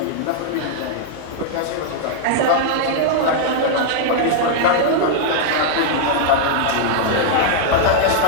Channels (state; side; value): different; both; correlation -0.01